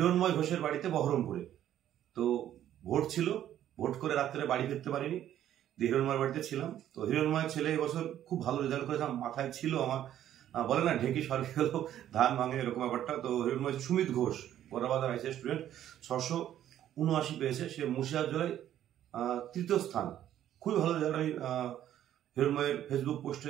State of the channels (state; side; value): quieter; left; 11.5 dB